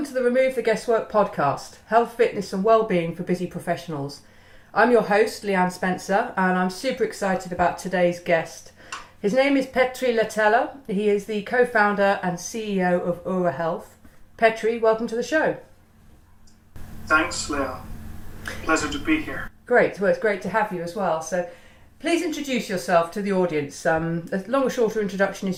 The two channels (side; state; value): both; identical; correlation 1.00